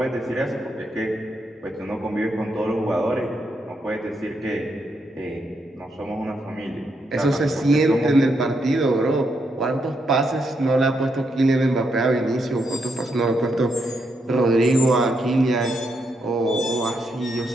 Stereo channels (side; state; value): both; normal; correlation 0.79